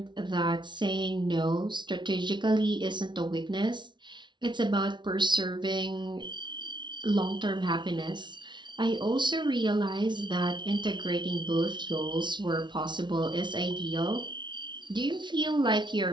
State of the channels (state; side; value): late; left; 0.23 ms